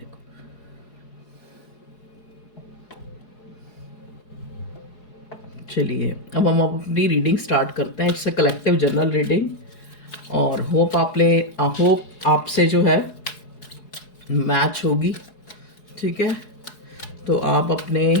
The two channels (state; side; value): late; right; 4.8 ms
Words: चलिए अब हम अपनी रीडिंग स्टार्ट करते हैं। It's a collective general reading और होप आपसे जो है मैच होगी। ठीक है, तो आप अपने,